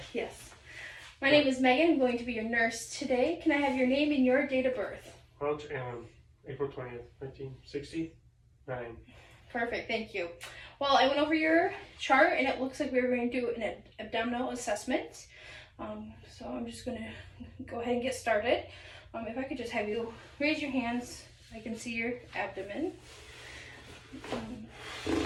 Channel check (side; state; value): both; identical; correlation 1.00